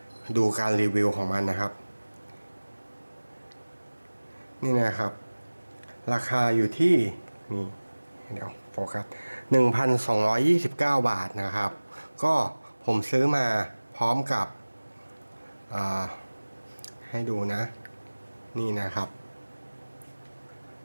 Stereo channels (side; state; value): both; inverted; correlation -1.00